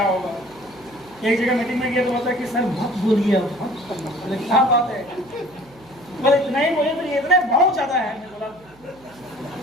होगा। एक जगह मीटिंग में गया तो बोलता है कि सर मत बोलिए, बोले क्या बात है, बोले इतना ही बोलिए, तो ये इतना बहुत ज्यादा है। मैं बोला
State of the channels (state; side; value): noise; right; hum, 27 dB below the sound